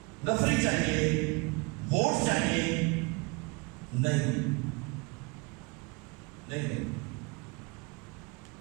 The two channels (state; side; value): quieter; left; 28.6 dB